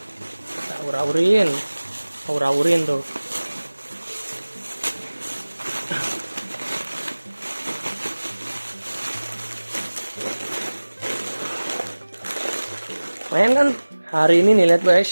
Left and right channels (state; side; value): inverted; both; correlation -1.00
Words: Kita aur-aurin tuh. Main kan? Hari ini nih lihat